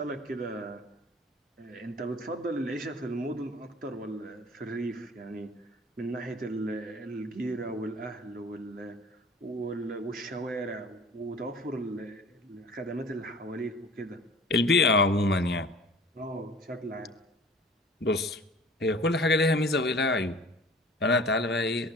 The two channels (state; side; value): normal; both; correlation 0.45